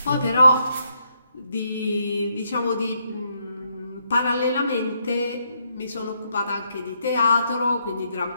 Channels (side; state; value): both; inverted; correlation -0.76